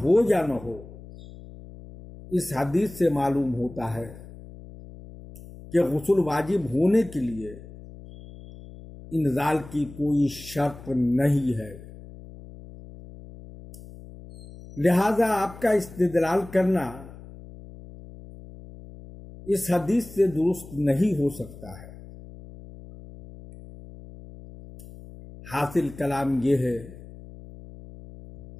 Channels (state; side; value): noise; left; hum, 17 dB below the sound